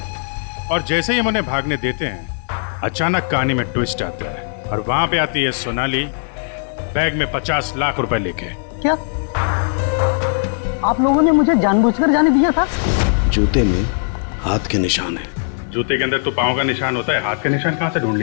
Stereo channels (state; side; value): silent; right; 61 dB below the other